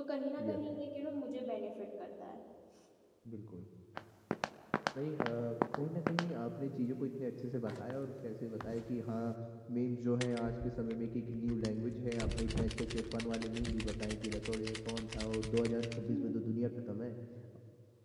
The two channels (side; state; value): both; identical; correlation 1.00